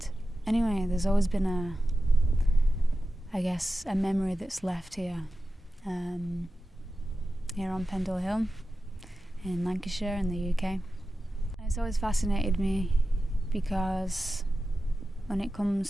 anyway, there's always been a memory that's left here, here on Pendle Hill in Lancashire in the UK. And it's always fascinated me because when it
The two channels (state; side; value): normal; both; correlation 0.93